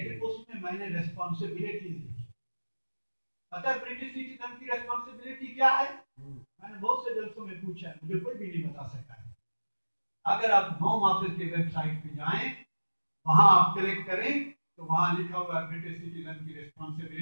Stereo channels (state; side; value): inverted; both; correlation -1.00